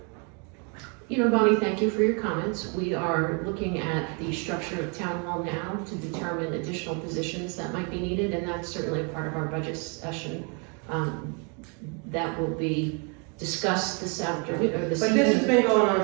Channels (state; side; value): quieter; left; 35.3 dB